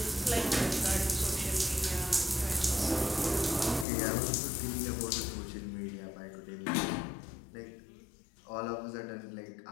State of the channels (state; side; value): drops out; right; at 3.9 s